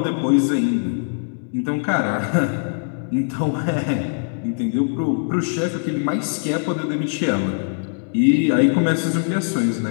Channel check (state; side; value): silent; right; 65 dB below the other